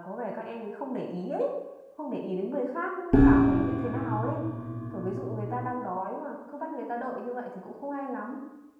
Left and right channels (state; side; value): identical; both; correlation 1.00